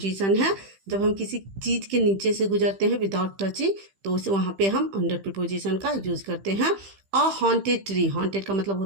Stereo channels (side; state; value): left; late; 15 ms